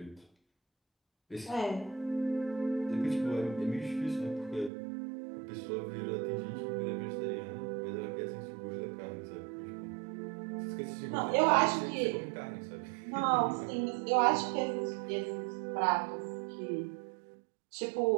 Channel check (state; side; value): drops out; left; at 4.7 s